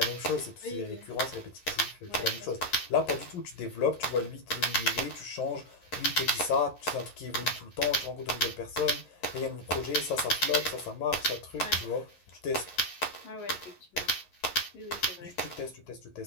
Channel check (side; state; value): right; late; 11 ms